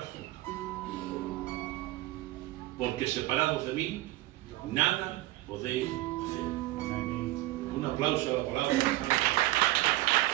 fruto. Porque separados de mí, nada podéis hacer. Un aplauso a la palabra.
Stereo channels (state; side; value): quieter; left; 17.4 dB